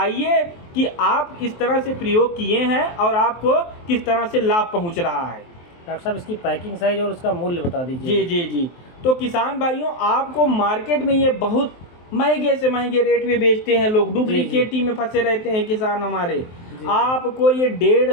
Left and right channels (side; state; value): right; late; 23 ms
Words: कि आप इस तरह से प्रयोग किए हैं और आपको किस तरह से लाभ पहुंच रहा है। डॉक्टर साहब इसकी पैकिंग साइज और उसका मूल्य बता दीजिए। जी। तो किसान भाइयों आपको मार्केट में ये बहुत महंगे से महंगे रेट में बेचते हैं लोग, डुप्लीकेटी में फंसे रहते हैं किसान हमारे। आपको ये